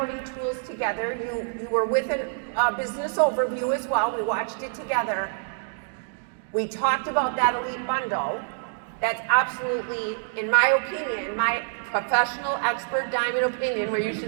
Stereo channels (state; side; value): silent; left; digital silence